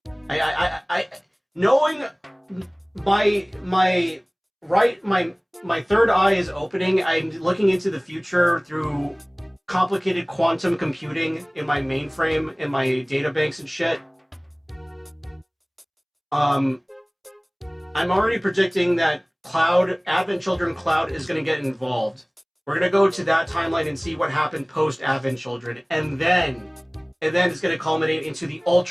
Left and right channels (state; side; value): identical; both; correlation 1.00